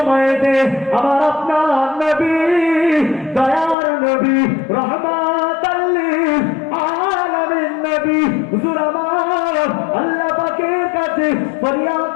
আমার আপনার নবী দয়ার নবী রহমাতাল লিল আলামিন নবী হুজুর আমার আল্লাহ পাকের কাছে ফরিয়াদ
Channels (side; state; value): right; drops out; at 3.8 s